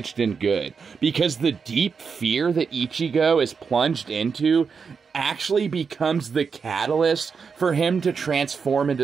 than good, because the deep fear that Ichigo is plunged into actually becomes the catalyst for him to transform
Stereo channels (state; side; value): quieter; left; 5.7 dB